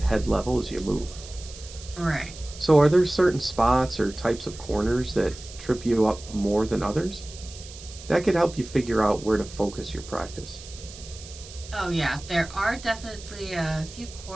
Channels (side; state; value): right; noise; hiss, 16 dB below the sound